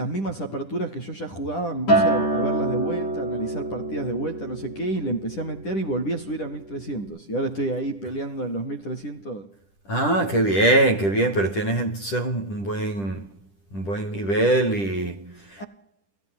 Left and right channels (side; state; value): right; late; 10 ms